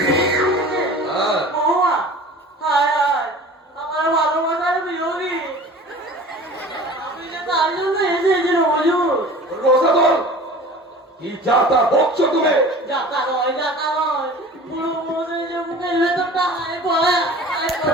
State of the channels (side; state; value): both; normal; correlation 0.42